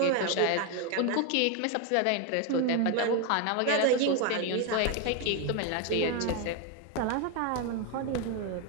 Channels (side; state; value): both; different; correlation 0.02